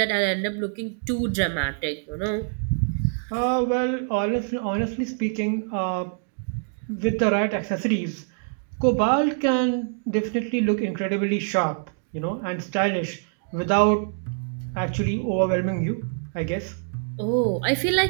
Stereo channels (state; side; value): silent; left; digital silence